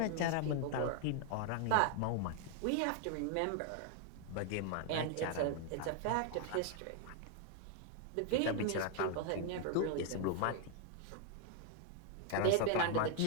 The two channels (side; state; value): both; different; correlation 0.00